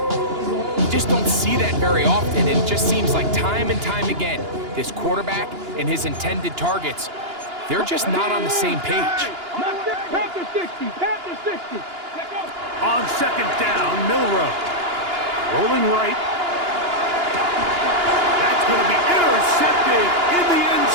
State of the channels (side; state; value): left; late; 2.9 ms